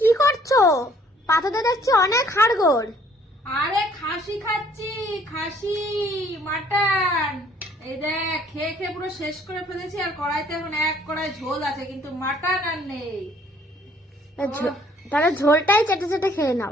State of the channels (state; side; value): normal; both; correlation 0.60